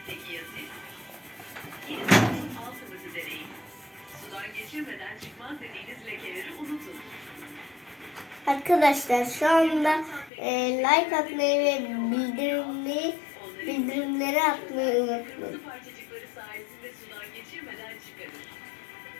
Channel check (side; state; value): right; drops out; at 10.3 s